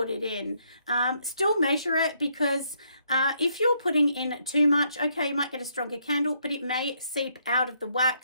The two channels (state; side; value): inverted; both; correlation -0.73